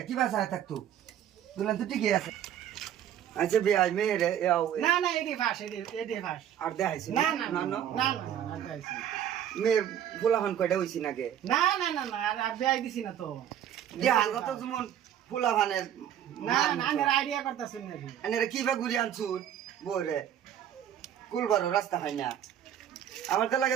কি বাসায় থাকতো দুলান তো ঠিকই আছে আচ্ছা ভাই মেয়ে রে না না এডি ফাস এডি ফাস আর দেখাইছি না না না না না না দেখাইছি মেয়ে ফুলাফান কয়টা হইছি নাকি না না না না আর দেখাই দিছি না তো দেহাল তো যেমন ফুলাফানের না না আমি আইডিয়া করতেছি না আনে কি বা ঘুরি আনছুন বরে কুলবারো রাস্তা হয় না আমার তো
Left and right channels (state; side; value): quieter; left; 10.3 dB